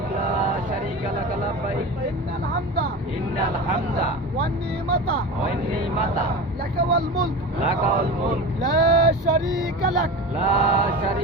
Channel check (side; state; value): both; normal; correlation 0.29